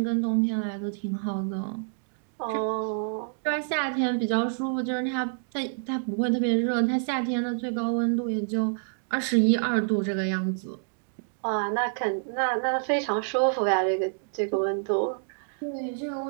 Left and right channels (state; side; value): silent; left; digital silence